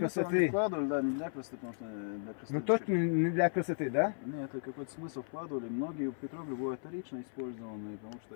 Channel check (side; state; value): right; silent; 54 dB below the other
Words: Вкладывали, да, не для красоты, потому что для красоты. Ну точно не для красоты, да? Нет, это какой-то смысл вкладывали. Многие петроглифы бывают вторично использованные, потому что